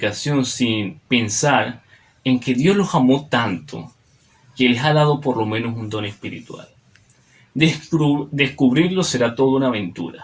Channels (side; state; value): both; identical; correlation 1.00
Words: sin pensar en que Dios los amó tanto que les ha dado por lo menos un don espiritual. Descubrirlo será toda una